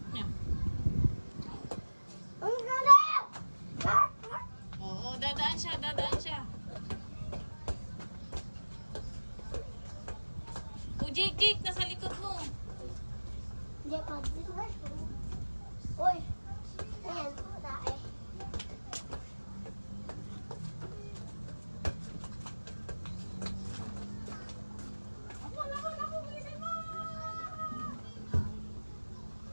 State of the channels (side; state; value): both; inverted; correlation -1.00